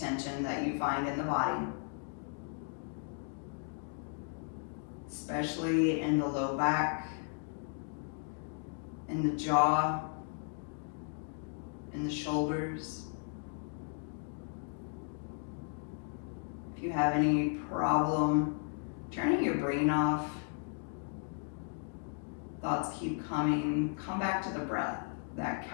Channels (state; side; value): silent; right; 54 dB below the other